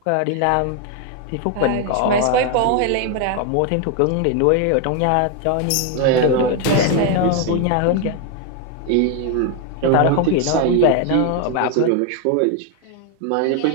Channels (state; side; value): different; both; correlation 0.01